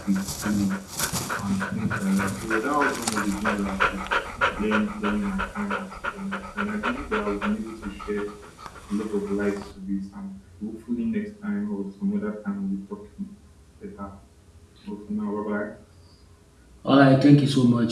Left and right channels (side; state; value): both; identical; correlation 1.00